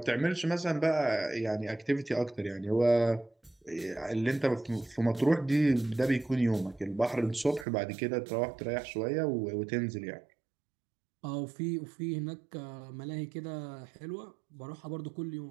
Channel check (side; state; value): left; drops out; at 7.7 s